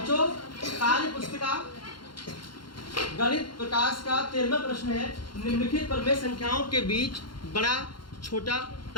कार्य पुस्तिका गणित प्रकाश का 13वां प्रश्न है। निम्नलिखित प्रमेय संख्याओं के बीच बड़ा, छोटा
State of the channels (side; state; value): right; late; 0.72 ms